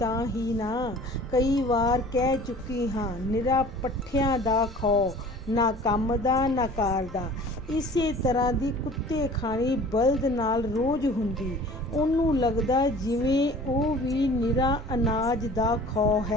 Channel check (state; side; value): normal; both; correlation 0.46